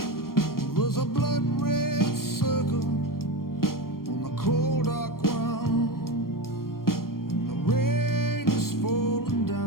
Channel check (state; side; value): late; right; 0.93 ms